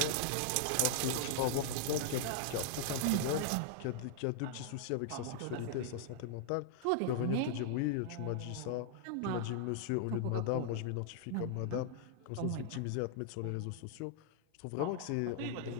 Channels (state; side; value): different; both; correlation -0.01